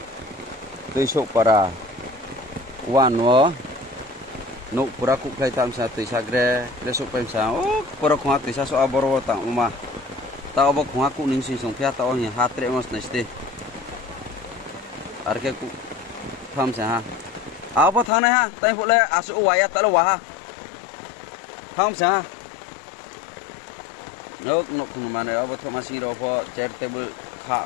तुइसोक para wan wo nuk pura ku klai tam sa tuisa gre lesok pem sa oh pura khwa tuisa so aboro ta uma ta obo khwa ku ning si song phya ta o hi hatre mas neste arke ku tham sa ha abo thane ha tai phu le asu waya ta lo wa ha tham sa nok nok khung ma ne abo thoma sing ro pho chair table kha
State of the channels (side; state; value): right; drops out; at 18.1 s